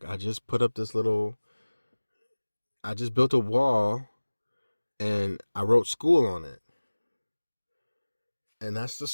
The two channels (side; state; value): both; inverted; correlation -1.00